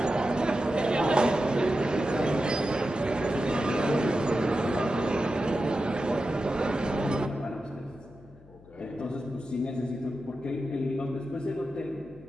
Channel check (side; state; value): left; noise; hum, 23 dB below the sound